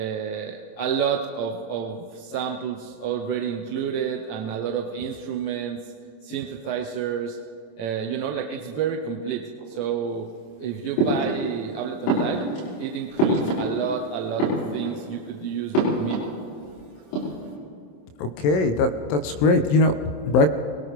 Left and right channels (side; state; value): right; late; 27 ms